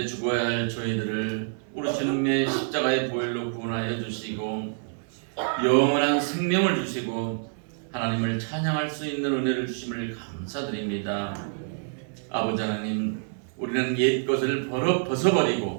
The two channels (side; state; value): left; silent; 60 dB below the other